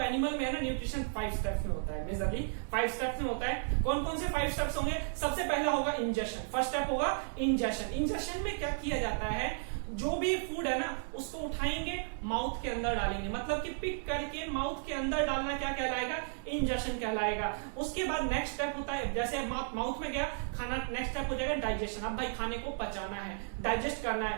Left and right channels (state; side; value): silent; left; 55 dB below the other